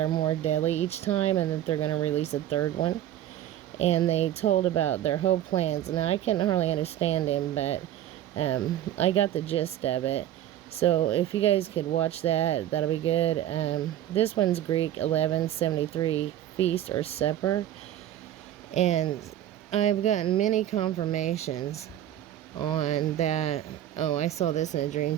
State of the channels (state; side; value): quieter; left; 11.9 dB